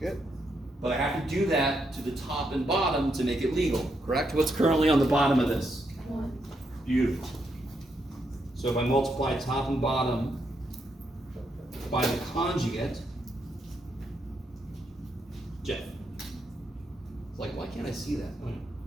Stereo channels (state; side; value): normal; both; correlation 0.79